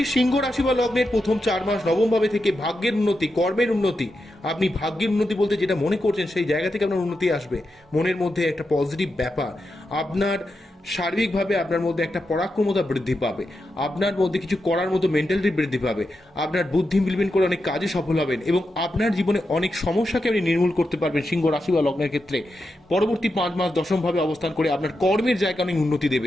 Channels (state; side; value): normal; both; correlation 0.87